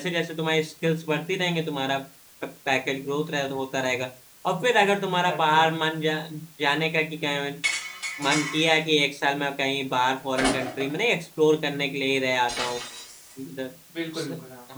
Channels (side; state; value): both; identical; correlation 1.00